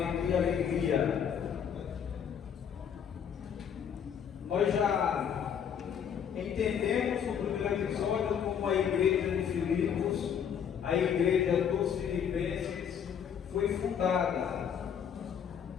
Alegria. Nós já entendemos no primeiro episódio como a igreja de Filipos, a igreja dos Filipenses, foi fundada.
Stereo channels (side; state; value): right; quieter; 8.1 dB